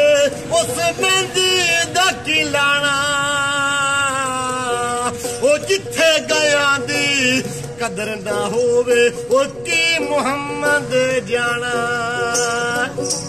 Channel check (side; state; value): right; noise; rumble, 24 dB below the sound